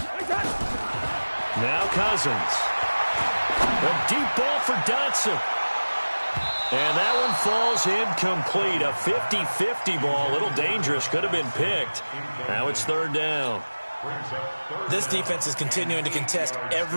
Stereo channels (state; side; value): inverted; both; correlation -1.00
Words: Now Cousins. A deep ball for Dotson. And that one falls incomplete. A 50-50 ball. A little dangerous. Could have been picked. Now it's 3rd down. This defense is continuing to contest